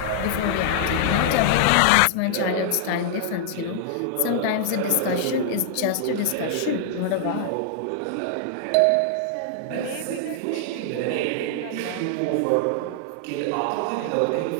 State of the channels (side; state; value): both; different; correlation -0.01